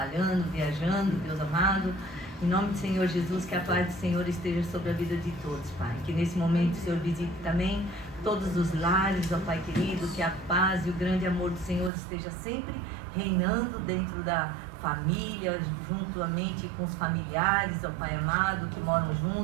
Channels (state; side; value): drops out; left; at 11.9 s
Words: viajando, Deus amado. Em nome do Senhor Jesus, que a paz do Senhor esteja sobre a vida de todos, Pai. Que nesse momento o Senhor visite também todos os lares, ó Pai querido, que a paz e o grande amor do Senhor esteja sempre reinando dentro da família, juntamente com os familiares, ó Pai amado, que moram